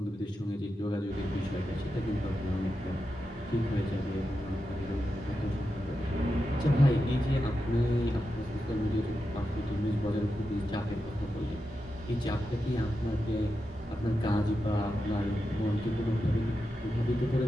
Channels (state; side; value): normal; both; correlation 0.89